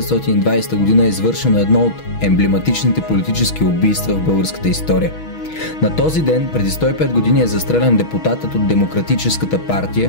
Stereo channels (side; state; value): right; late; 6.2 ms